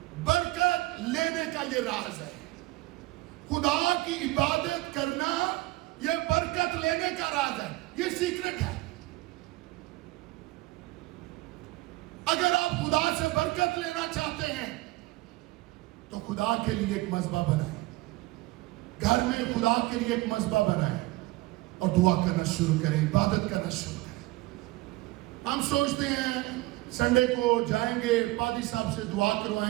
برکت لینے کا یہ راز ہے. خدا کی عبادت کرنا یہ برکت لینے کا راز ہے, یہ سیکرٹ ہے. اگر آپ خدا سے برکت لینا چاہتے ہیں تو خدا کے لیے ایک مذبح بنائیں, گھر میں خدا کے لیے ایک مذبح بنائیں اور دعا کرنا شروع کریں, عبادت کرنا شروع کریں. ہم سوچتے ہیں سنڈے کو جائیں گے پادری صاحب سے دعا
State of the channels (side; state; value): left; quieter; 19.9 dB